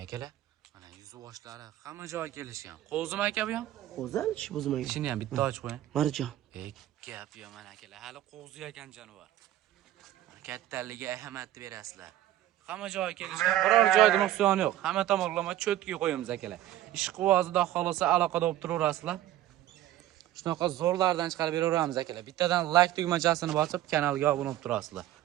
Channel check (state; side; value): quieter; left; 13.6 dB